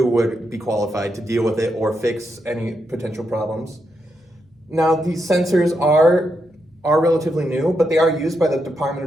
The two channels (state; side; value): normal; both; correlation 0.83